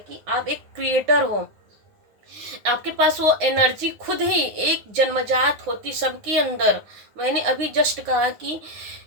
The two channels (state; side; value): late; left; 9.7 ms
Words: आप एक क्रिएटर हो, आपके पास वो एनर्जी खुद ही एक जन्मजात होती सबके अंदर। मैंने अभी जस्ट कहा कि